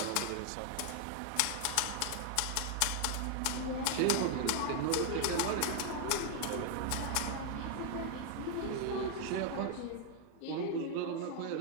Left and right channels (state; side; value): different; both; correlation 0.00